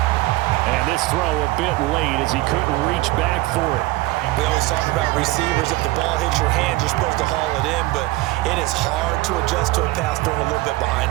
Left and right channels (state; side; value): quieter; left; 19.3 dB